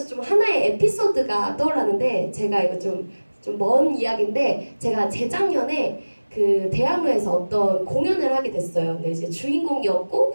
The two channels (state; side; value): inverted; both; correlation -1.00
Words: 좀 하나의 에피소드가 떠올랐는데, 제가 이거 좀 먼 이야기인데, 제가 재작년에 그 대학로에서 어떤 공연을 하게 됐어요. 근데 이제 주인공이었고